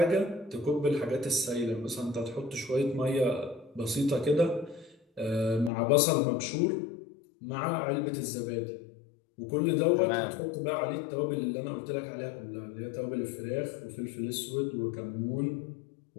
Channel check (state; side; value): drops out; right; at 5.7 s